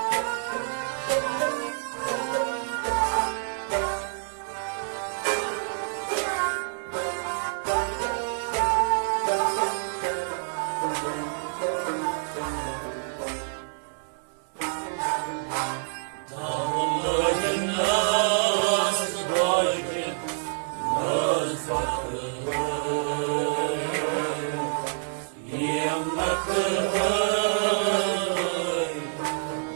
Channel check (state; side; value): silent; left; digital silence